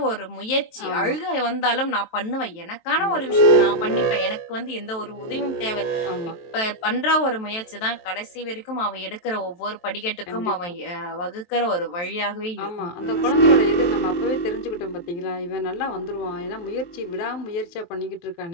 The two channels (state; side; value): late; right; 23 ms